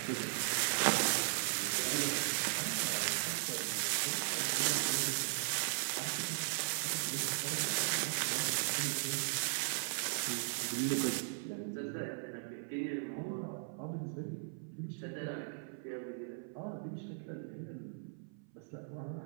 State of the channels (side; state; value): left; silent; 53 dB below the other